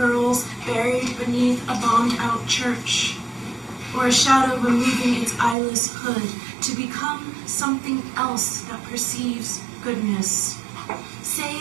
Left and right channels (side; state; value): left; drops out; at 5.6 s